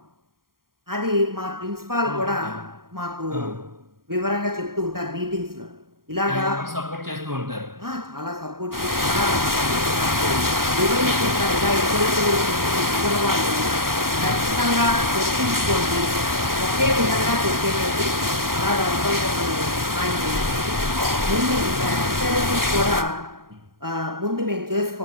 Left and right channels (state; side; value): late; left; 0.92 ms